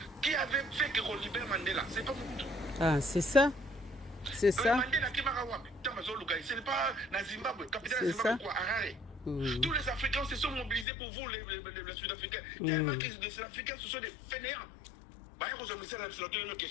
qui avait fait que qu'on libère Mandela? C'est pas vous. Ah, c'est ça. C'est ça. Ce n'est pas la Zimbabwe, capitale de Zimbabwe, quoi, Harare. Tous les Africains se sont mobilisés pour vous, les Sud-Africains. Tellement que les Sud-Africains, ce sont des fainéants. C'est une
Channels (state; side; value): drops out; right; at 10.9 s